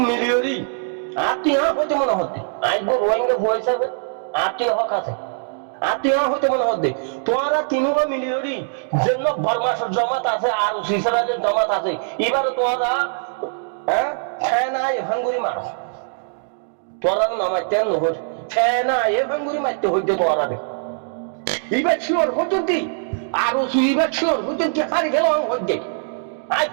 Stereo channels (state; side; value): silent; left; digital silence